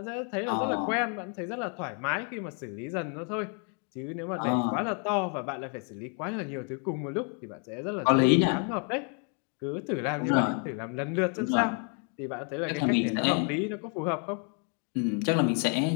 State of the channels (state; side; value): quieter; right; 39.7 dB